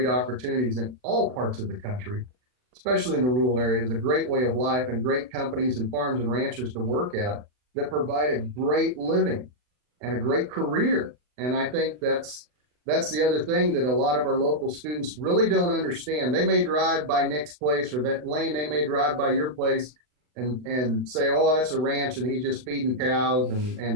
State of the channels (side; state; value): left; late; 40 ms